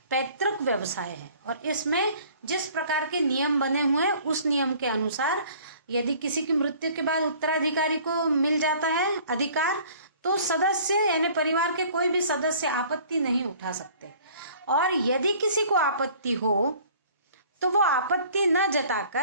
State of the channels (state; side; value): inverted; both; correlation -0.52